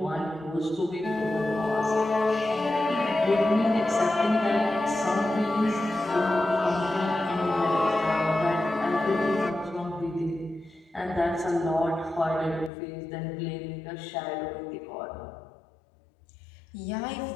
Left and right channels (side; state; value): right; drops out; at 12.7 s